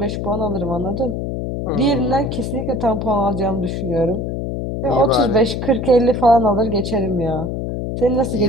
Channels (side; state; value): left; noise; hum, 3 dB below the sound